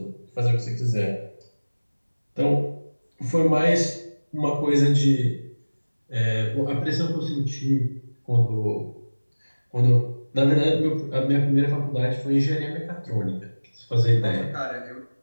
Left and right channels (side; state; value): both; inverted; correlation -1.00